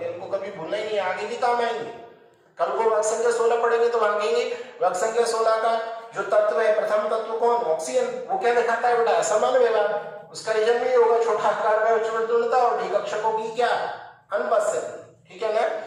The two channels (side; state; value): both; identical; correlation 1.00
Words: इनको कभी भूलना ही नहीं, आगे भी काम आएंगे। कल को वर्ग संख्या 16 पढ़ेंगे तो वहां कहेंगे वर्ग संख्या 16 का जो तत्व है, प्रथम तत्व कौन, ऑक्सीजन, वो क्या दिखाता है बेटा, असमान व्यवहार। उसका रीजन भी होगा छोटा आकार में उच्च विद्युलता और डी कक्षकों की क्या अनुपस्थिति, ठीक है ना।